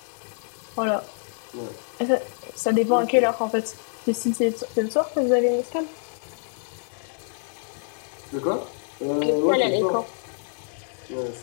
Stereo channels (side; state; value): right; silent; digital silence